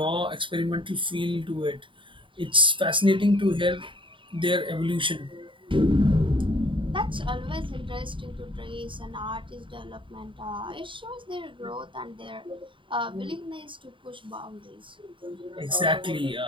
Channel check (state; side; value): late; left; 0.24 ms